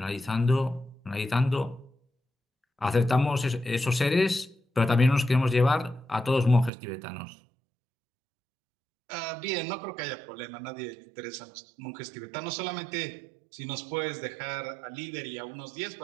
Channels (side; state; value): left; drops out; at 6.7 s